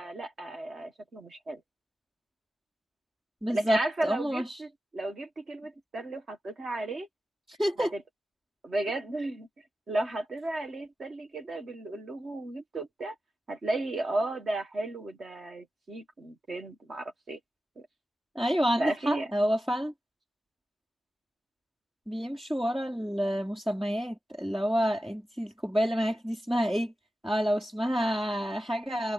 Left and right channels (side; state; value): both; normal; correlation 0.93